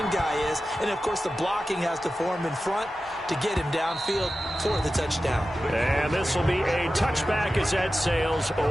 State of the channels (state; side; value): normal; both; correlation 0.93